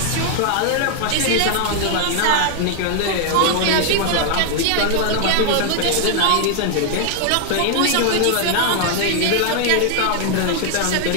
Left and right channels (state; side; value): different; both; correlation 0.00